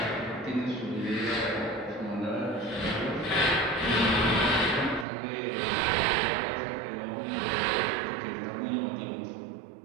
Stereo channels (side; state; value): left; drops out; at 5.1 s